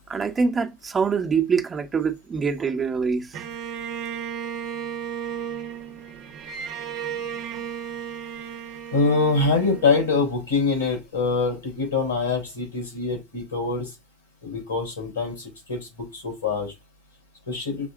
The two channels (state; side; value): normal; both; correlation 0.08